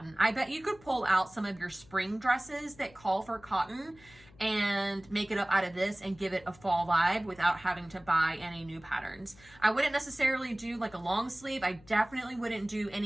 I bet you could pull out some of your spring dresses that call for cotton and make it up out of this and give it a fall vibe without having to buy any new patterns. I wouldn't necessarily do like a long sleeve. I definitely wouldn't do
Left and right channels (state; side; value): noise; left; hum, 25 dB below the sound